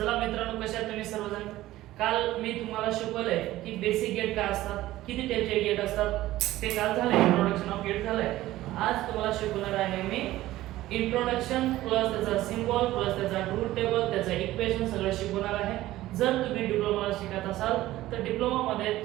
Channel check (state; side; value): quieter; left; 15.9 dB